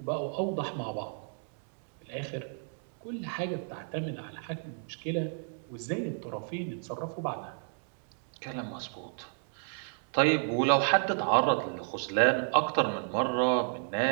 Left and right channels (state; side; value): silent; left; 56 dB below the other